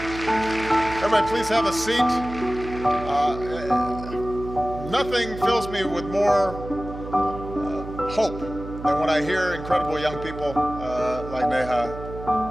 Everybody, please have a seat. Nothing fills me with more hope than when I hear incredible young people like Neha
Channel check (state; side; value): noise; right; hum, 11 dB below the sound